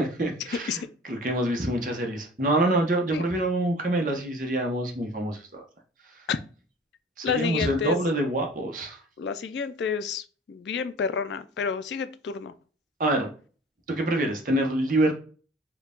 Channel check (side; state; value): both; normal; correlation 0.45